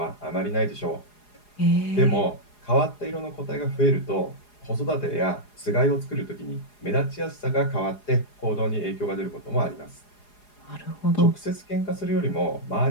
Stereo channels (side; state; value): right; late; 4.8 ms